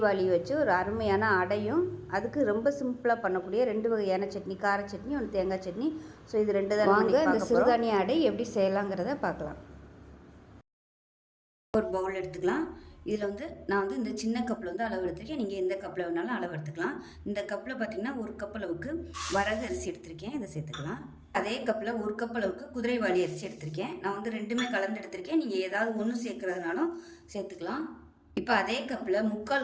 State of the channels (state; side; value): identical; both; correlation 1.00